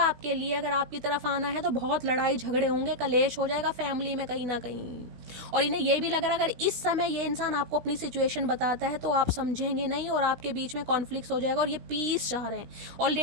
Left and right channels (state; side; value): late; left; 16 ms